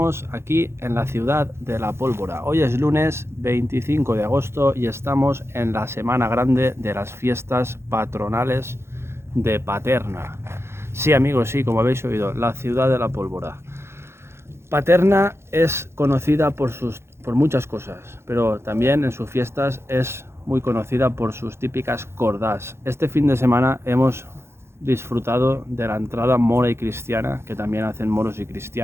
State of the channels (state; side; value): late; left; 0.12 ms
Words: aquí en la ciudad de La Pólvora. Hoy es lunes 25 de agosto y estamos en la semana grande de las fiestas patronales de Paterna. Sí amigos, sí, como habéis oído, la ciudad de La Pólvora. Paterna es conocida por muchas cosas, pero también en sus fiestas es muy conocida por sus típicas cordás. Este fin de semana hemos disfrutado de la entrada mora y cristiana, que también hacen moros y